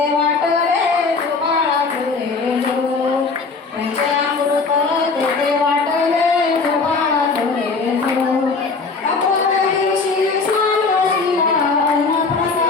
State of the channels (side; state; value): right; quieter; 4.3 dB